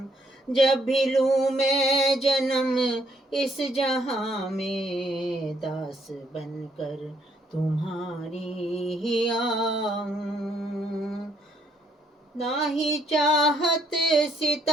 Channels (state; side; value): normal; both; correlation 0.69